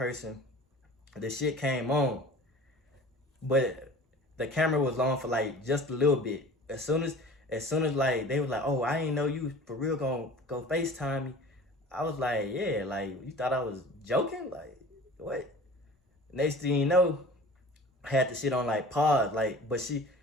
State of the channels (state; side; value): normal; both; correlation 0.42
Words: the shit came on, but the camera was on for like just a little bit. As soon as like they was like, oh, I ain't know you for real gonna go FaceTime me. I was like, yeah, like you thought I was joking? Like what? Next thing you know, I had the shit on like pause. Like, but he